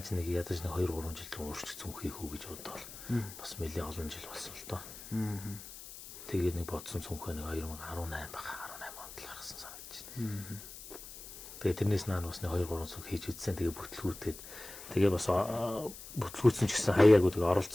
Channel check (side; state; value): left; noise; hiss, 14 dB below the sound